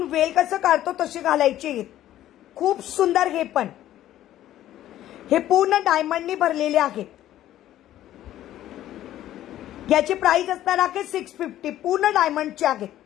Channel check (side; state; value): right; quieter; 13.0 dB